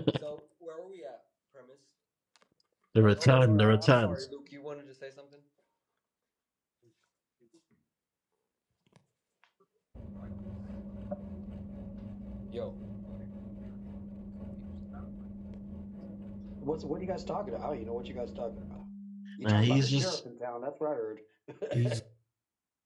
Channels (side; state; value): both; identical; correlation 1.00